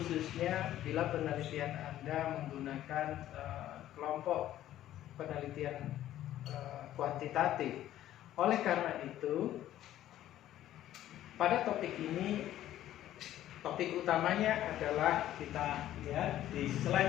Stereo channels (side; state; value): right; quieter; 12.9 dB